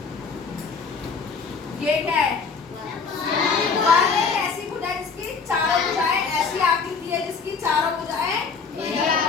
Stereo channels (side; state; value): right; quieter; 5.2 dB